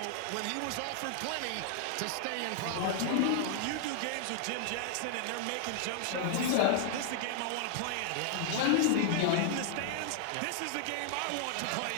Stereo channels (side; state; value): both; different; correlation 0.00